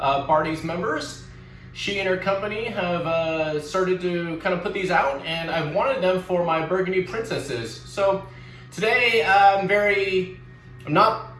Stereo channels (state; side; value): identical; both; correlation 1.00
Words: members. She and her company have started to kind of put these out, and I've wanted them for my Burgundy Princesses. So today I'm not